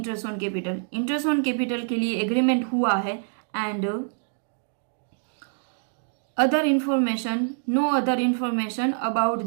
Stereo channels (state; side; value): silent; left; digital silence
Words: on capital, interest on capital के लिए एग्रीमेंट हुआ है and other information, no other information about